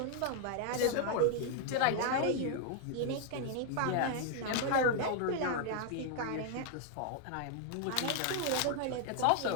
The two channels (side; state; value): both; different; correlation 0.00